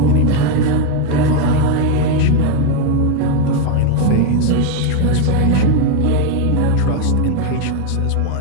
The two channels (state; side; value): different; both; correlation 0.01